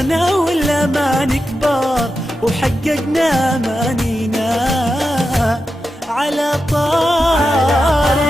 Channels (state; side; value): normal; both; correlation 0.90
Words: والأمان كبار وحققنا أمانينا. على طار